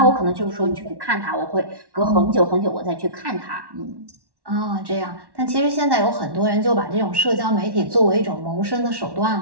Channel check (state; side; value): late; left; 1.1 ms